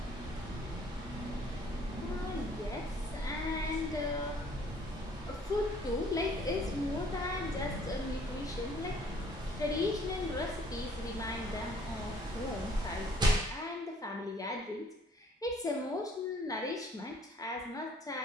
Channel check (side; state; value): both; normal; correlation 0.59